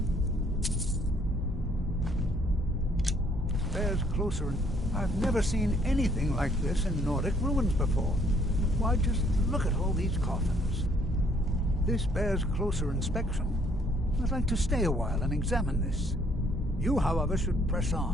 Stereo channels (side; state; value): both; normal; correlation 0.65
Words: Bears closer and... I've never seen anything like this in Nordic ruins before. Why just look at all these coffins. This bears closer inspection. I'd like to stay a while and examine this. You, however, should press